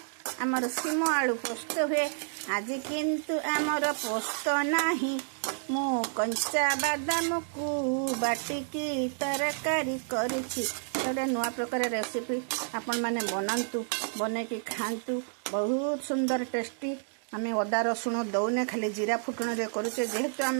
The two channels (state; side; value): silent; left; digital silence